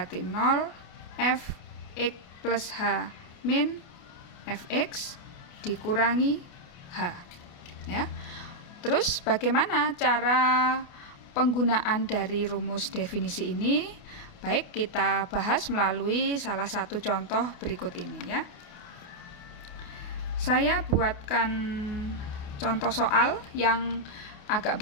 0 f x plus h min fx dikurangi h ya. Terus bagaimana cara penggunaan dari rumus definisi ini? Baik, kita bahas melalui salah satu contoh berikut ini ya. Saya buatkan contoh soal yang agak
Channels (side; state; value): right; late; 28 ms